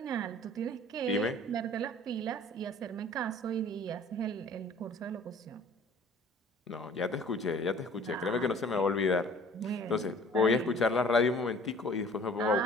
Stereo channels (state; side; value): normal; both; correlation 0.50